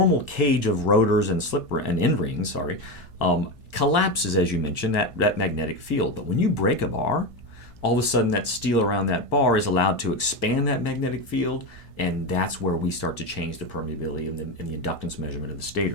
cage of rotors and end rings, collapses, as you mentioned, that magnetic field. But when you break a bar, all of a sudden that steel around that bar is allowed to expand that magnetic field, And that's where we start to change the permeability and the inductance measurement of the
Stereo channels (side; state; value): right; late; 1.6 ms